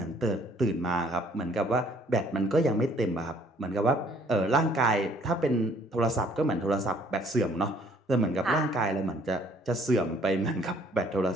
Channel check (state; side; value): normal; both; correlation 0.60